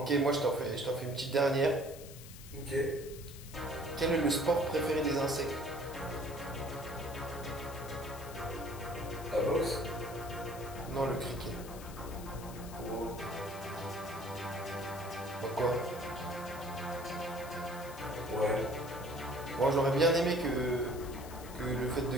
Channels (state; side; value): noise; left; hiss, 16 dB below the sound